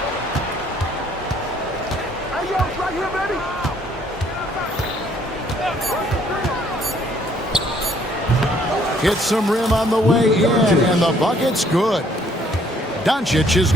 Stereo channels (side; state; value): both; normal; correlation 0.63